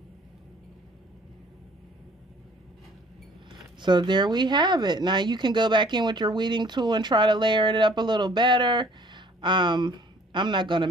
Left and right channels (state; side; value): normal; both; correlation 0.56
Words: So there we have it. Now you can go back in with your weeding tool and try to layer it up a little better. I'm not going to